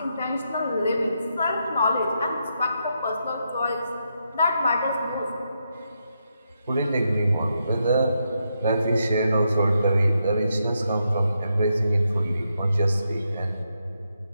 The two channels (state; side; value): inverted; both; correlation -0.82